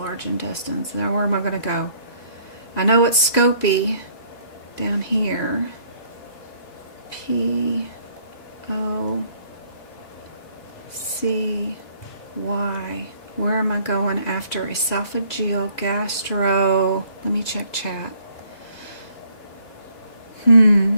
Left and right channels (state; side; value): late; right; 3.1 ms